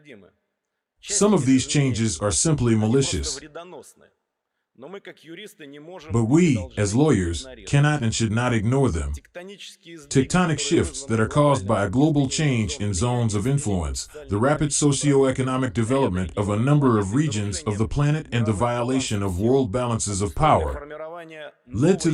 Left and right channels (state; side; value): identical; both; correlation 1.00